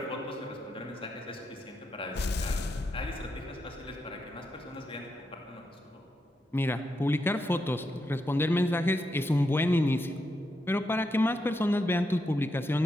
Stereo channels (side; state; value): both; normal; correlation 0.83